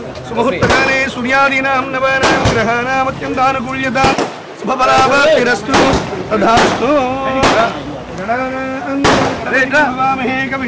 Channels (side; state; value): both; identical; correlation 1.00